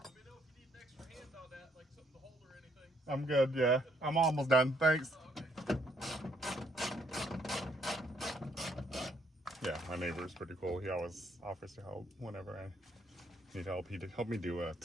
me know if you need an extra hand on that, like something to hold or anything. I'm good, yeah. I'm almost done. Thanks. Oh, okay. Yeah, my neighbor's pretty cool. He always offers to help whenever I need help. He helped me do a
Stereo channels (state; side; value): normal; both; correlation 0.70